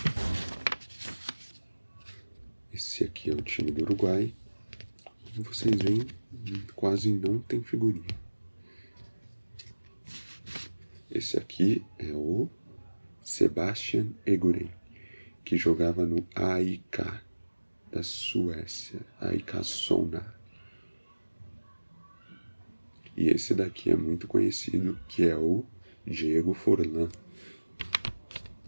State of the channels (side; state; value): both; inverted; correlation -1.00